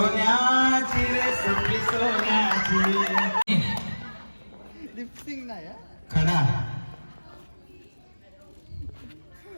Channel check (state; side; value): inverted; both; correlation -1.00